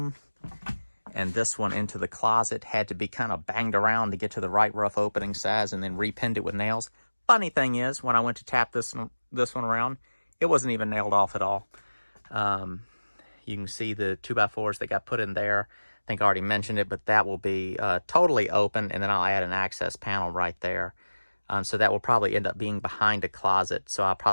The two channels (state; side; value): inverted; both; correlation -1.00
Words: and this one into the closet had to be kind of banged around to get to the right rough opening size and then repinned it with nails. Funny thing is, when I went to tap this one around, it wasn't even nailed off at all. You can see the 2x4s that got put in there. I think I already mentioned it, but that will be totally open, and then I'll add an access panel right there. So that will probably end up being behind a closet. So I'll